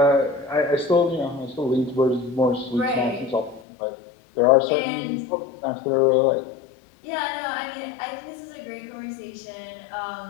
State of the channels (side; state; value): right; drops out; at 3.6 s